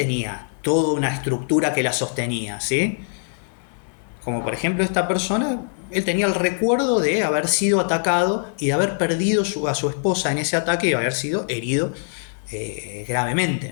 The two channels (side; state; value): right; silent; 64 dB below the other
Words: toda una estructura que la sostenía, ¿sí? Como por ejemplo esta persona, él tenía el recuerdo de haber sido atacado y de haber perdido a su esposa en ese ataque y haber sido herido